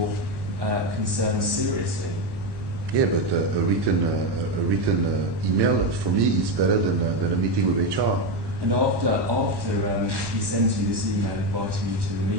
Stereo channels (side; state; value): left; late; 1.1 ms